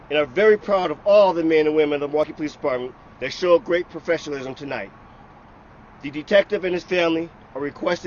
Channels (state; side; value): identical; both; correlation 1.00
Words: and are very proud of all the men and women of the Milwaukee Police Department that showed great professionalism tonight. The detective and his family are